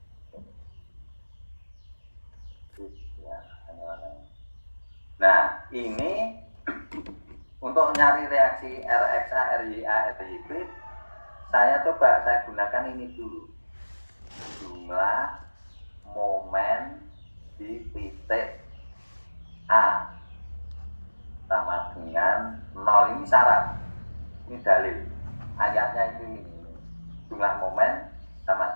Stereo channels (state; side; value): inverted; both; correlation -1.00